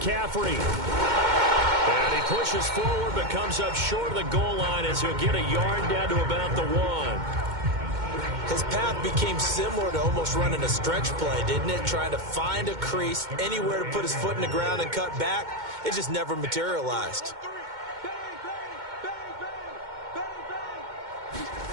And he pushes forward but comes up short of the goal line as he'll get a yard down to about the 1. His path became similar to almost running a stretch play, didn't it? Trying to find a crease, anywhere to put his foot in the ground and cut back. It just never materialized.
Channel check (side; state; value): left; late; 2.1 ms